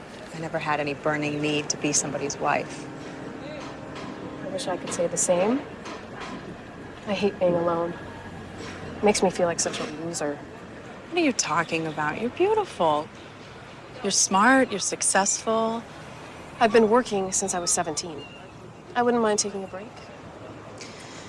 I I never had any burning need to be somebody's wife. I wish I could say the same. I hate being alone. It makes me feel like such a loser. What are you talking about? You're beautiful. You're smart, you're successful. I've been working since I was 17. I wouldn't mind taking a break.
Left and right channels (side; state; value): both; identical; correlation 1.00